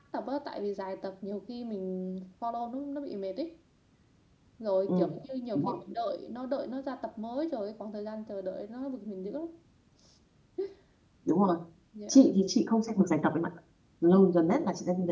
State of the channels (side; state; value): both; identical; correlation 1.00